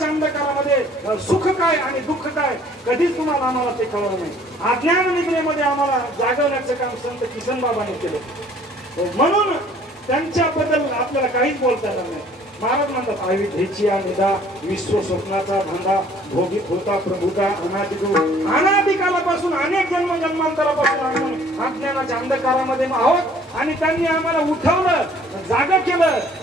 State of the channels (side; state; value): both; normal; correlation 0.56